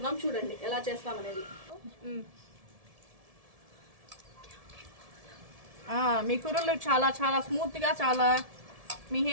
చూడండి ఎలా చేస్తాం అనేది. మీ కుర్రలు చాలా చాలా స్మూత్ గా, చాలా మీ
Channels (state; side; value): late; left; 1.7 ms